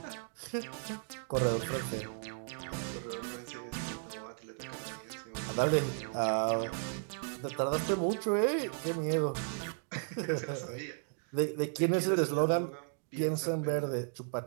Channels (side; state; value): left; silent; 54 dB below the other